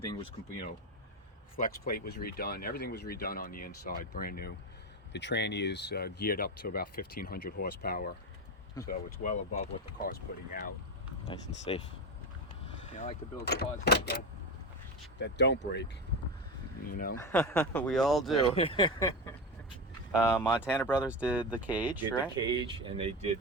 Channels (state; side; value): normal; both; correlation 0.19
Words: was complete. You know, flex plate was redone. Everything was redone on the inside, brand new. The tranny is geared up to about 1,500 horsepower, so it's well above what the car's putting out. Nice and safe. Yeah, I like to build cars that don't break, you know. We all do. Montana Brothers did the cage, right? The cage, and they